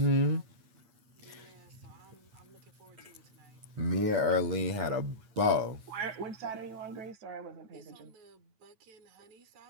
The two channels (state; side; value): late; left; 9.0 ms